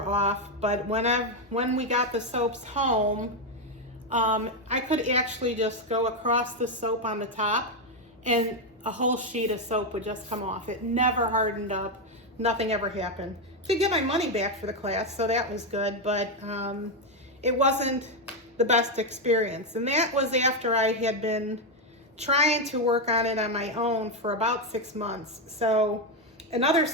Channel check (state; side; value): normal; both; correlation 0.05